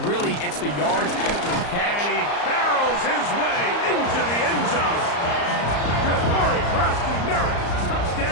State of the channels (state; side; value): late; right; 34 ms